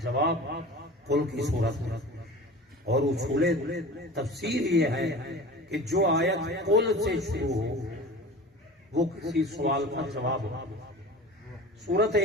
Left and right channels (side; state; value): both; normal; correlation 0.37